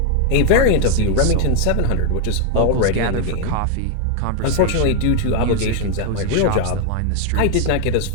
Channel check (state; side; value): different; both; correlation 0.00